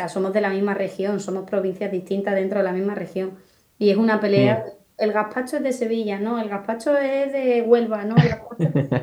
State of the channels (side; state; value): both; identical; correlation 1.00